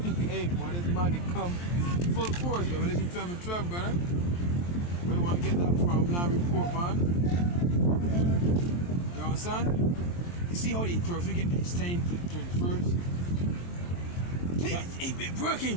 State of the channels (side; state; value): right; late; 23 ms